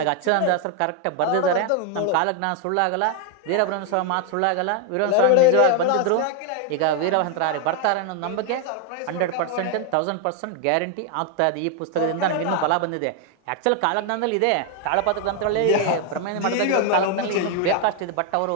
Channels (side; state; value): both; different; correlation 0.01